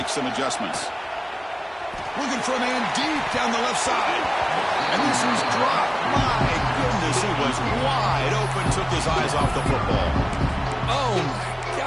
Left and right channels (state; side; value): identical; both; correlation 1.00